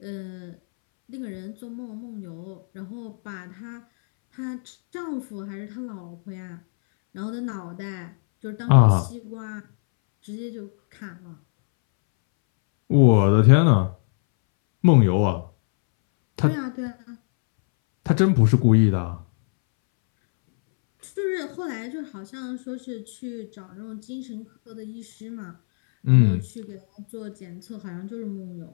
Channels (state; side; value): silent; right; 63 dB below the other